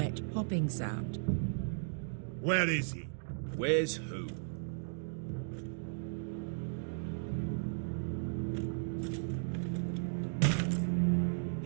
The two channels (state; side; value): silent; left; digital silence